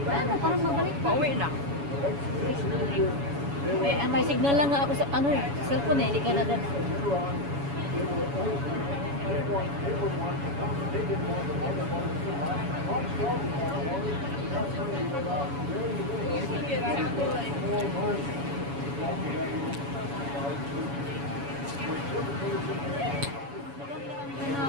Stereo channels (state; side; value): late; left; 7.1 ms